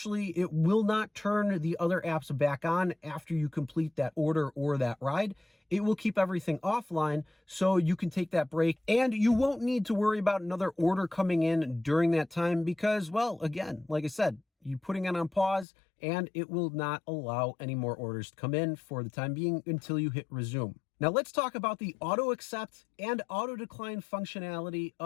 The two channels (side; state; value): right; drops out; at 15.7 s